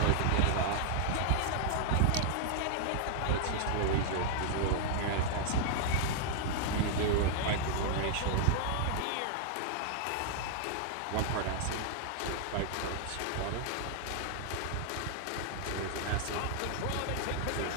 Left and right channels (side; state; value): both; different; correlation 0.00